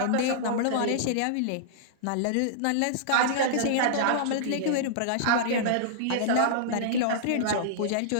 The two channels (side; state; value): both; different; correlation -0.02